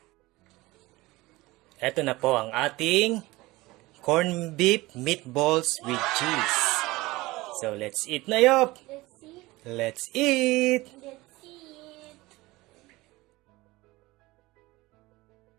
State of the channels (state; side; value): quieter; left; 20.3 dB